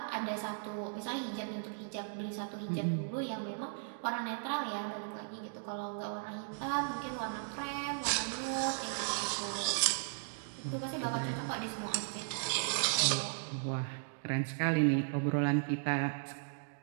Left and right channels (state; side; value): silent; left; digital silence